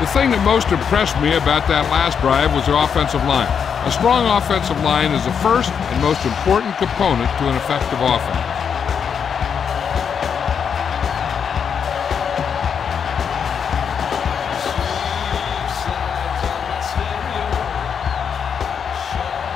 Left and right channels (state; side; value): quieter; right; 7.1 dB